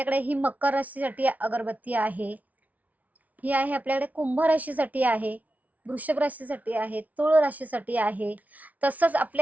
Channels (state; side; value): late; left; 0.072 ms